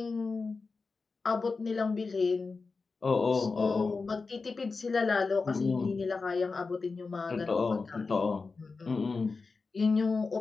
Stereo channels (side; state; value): right; quieter; 4.3 dB